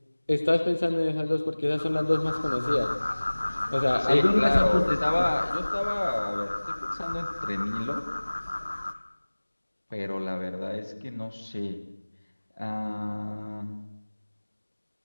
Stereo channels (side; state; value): both; inverted; correlation -1.00